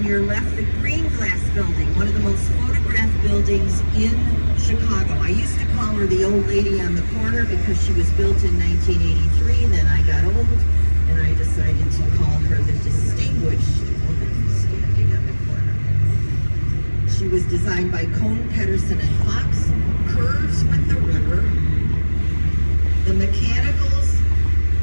your left, the green glass building, one of the most photographed buildings in Chicago. I used to call her the old lady on the corner because she was built in 1983. Then I got old and I decided to call her the distinguished woman standing on the corner. She was designed by Cohn, Pedersen, and Fox. Curves with the river. The mechanicals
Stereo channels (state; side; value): inverted; both; correlation -1.00